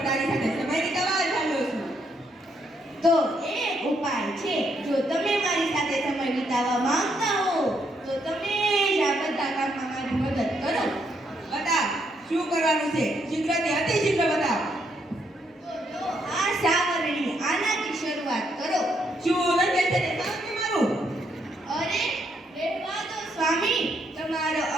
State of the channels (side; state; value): both; normal; correlation 0.75